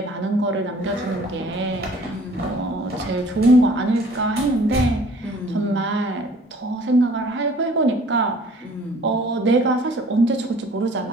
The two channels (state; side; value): normal; both; correlation 0.53